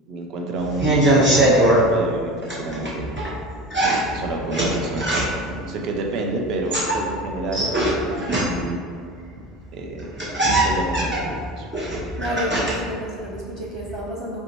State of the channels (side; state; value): both; normal; correlation 0.32